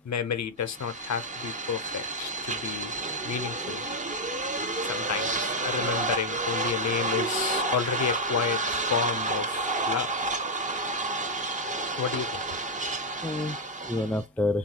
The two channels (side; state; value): both; normal; correlation 0.00